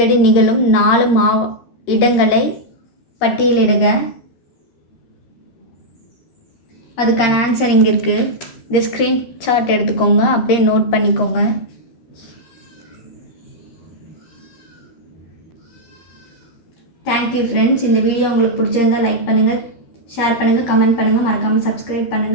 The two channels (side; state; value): right; late; 13 ms